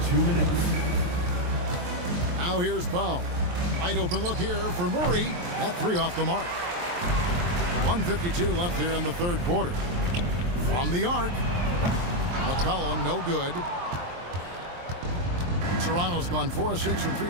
2 minutes. Now here's Powell. Wide open look here for Murray. That 3 off the mark. 1:52 left here in the third quarter. From the arc. McCollum, no good. Toronto's gone 4 of 6 from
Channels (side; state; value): left; late; 23 ms